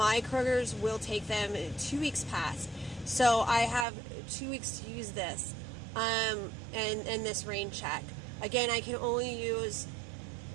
Kroger's will take them 2 weeks past. So I have 2 weeks to use this and this rain check. Again, I can only use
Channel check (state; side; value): drops out; left; at 3.9 s